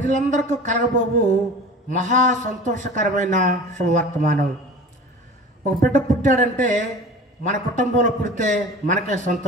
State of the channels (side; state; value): both; normal; correlation 0.38